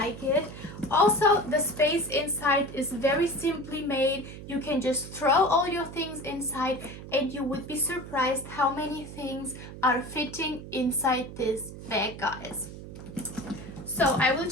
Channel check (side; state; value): right; noise; hum, 12 dB below the sound